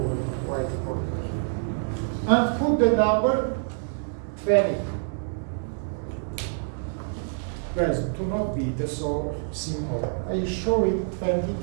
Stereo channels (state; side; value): silent; left; digital silence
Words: the white one. And put the number 20. Guys, do not be so simple. I show it 20